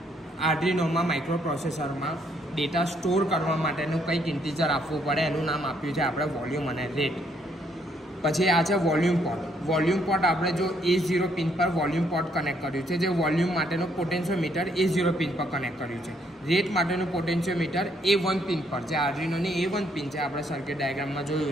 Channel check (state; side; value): normal; both; correlation 0.70